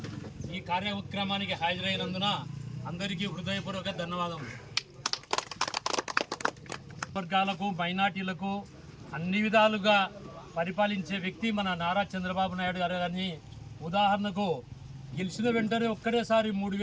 ఈ కార్యక్రమానికి హాజరైనందున అందరికీ హృదయపూర్వక ధన్యవాదములు. వర్గాలకు, మైనార్టీలకు అన్ని విధాలుగా పరిపాలించే వ్యక్తి మన నారా చంద్రబాబు నాయుడు గారు. కానీ ఉదాహరణకు గెలిచిన వెంటనే ఒక్కడేసారి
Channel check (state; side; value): identical; both; correlation 1.00